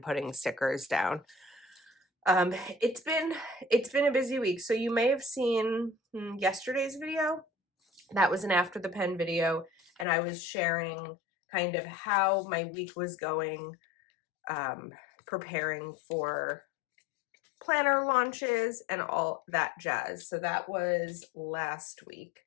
putting stickers down. It's been a busy week. So you may have seen yesterday's video. That was an after the pen video, and I was sharing kind of how my week was going, preparing for planner launches and all that jazz. So that was last week.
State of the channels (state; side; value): drops out; right; at 10.1 s